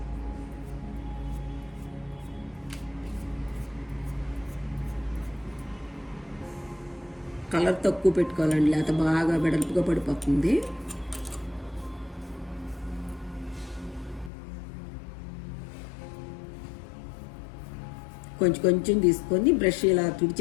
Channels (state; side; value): drops out; right; at 14.3 s